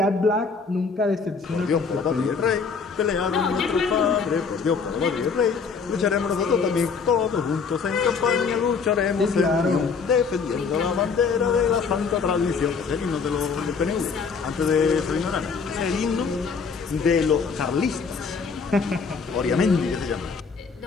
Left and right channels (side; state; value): right; quieter; 5.3 dB